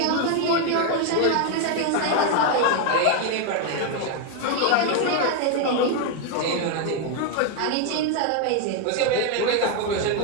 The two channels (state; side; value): different; both; correlation 0.01